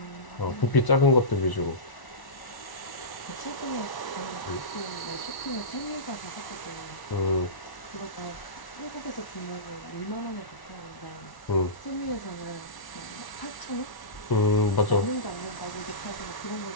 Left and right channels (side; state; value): right; late; 1.1 ms